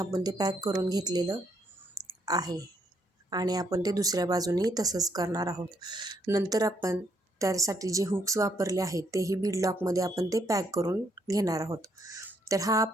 ते पॅक करून घेतलेलं आहे आणि आपण ते दुसऱ्या बाजूनेही तसंच करणार आहोत. नंतर आपण त्यासाठी जे हुक्स वापरले आहेत तेही बीड लॉकमध्ये आपण ते पॅक करून घेणार आहोत. तर हा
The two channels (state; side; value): normal; both; correlation 0.73